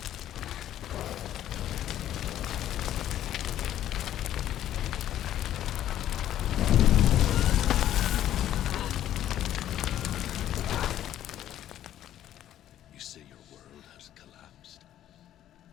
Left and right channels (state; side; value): quieter; right; 11.9 dB